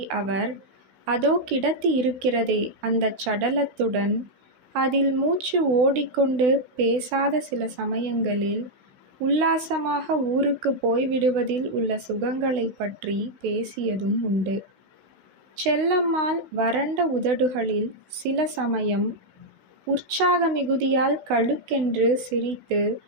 அவர் அதோ கிடத்தி இருக்கிறதே அந்தச் சடலத்துடன் அதில் மூச்சு ஓடிக்கொண்டு பேசாத சில சமயங்களில் உல்லாசமாக ஊருக்கு போய்விடுவதில் உள்ள சுகங்களை பற்றி பேசியதும் உண்டு. செல்லம்மாள் வறண்ட உதடுகளில் சில சமயம் உற்சாக மிகுதியால் கழுக்கென்று சிரித்து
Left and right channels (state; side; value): late; left; 16 ms